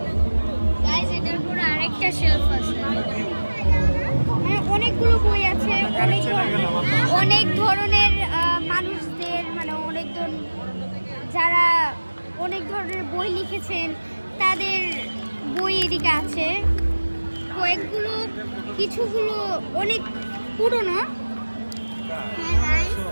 গাইস, এটার উপরে আরেকটা শেলফ আছে। অনেকগুলো বই আছে, অনেক ধরনের মানুষদের, মানে যারা অনেক ধরনের বই লিখেছেন তাদের বই এদিকে আছে। কয়েকগুলো, কিছুগুলো অনেক পুরনো।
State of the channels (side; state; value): both; inverted; correlation -1.00